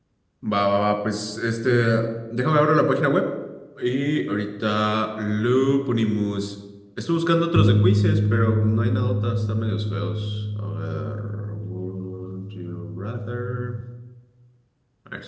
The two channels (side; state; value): both; identical; correlation 1.00